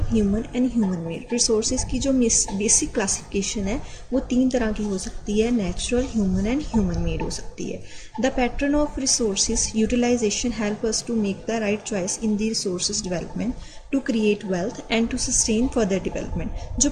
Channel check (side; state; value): both; identical; correlation 1.00